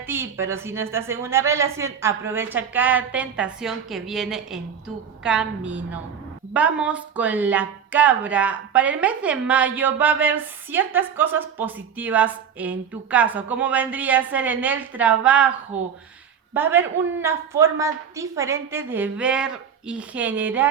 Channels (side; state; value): left; quieter; 7.6 dB